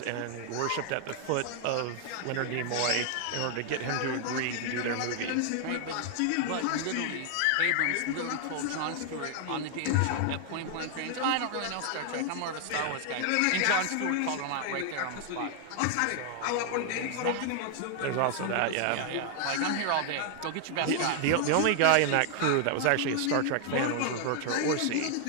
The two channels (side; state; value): both; different; correlation 0.00